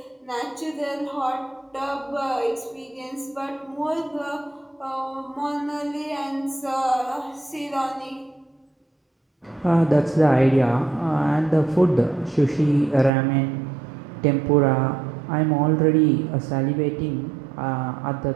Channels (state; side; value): drops out; left; at 13.1 s